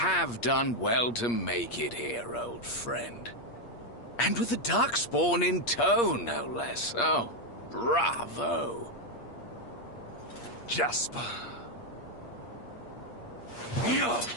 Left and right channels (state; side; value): late; right; 8.5 ms